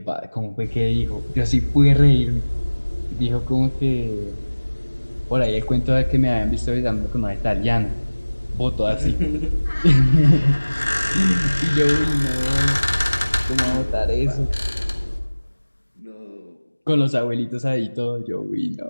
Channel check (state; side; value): inverted; both; correlation -1.00